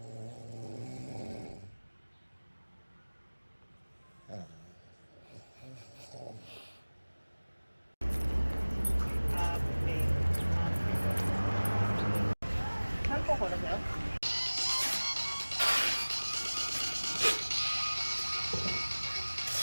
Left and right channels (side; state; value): both; inverted; correlation -1.00